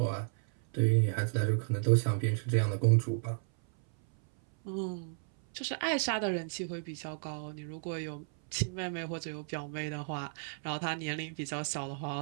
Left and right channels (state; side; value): silent; left; 56 dB below the other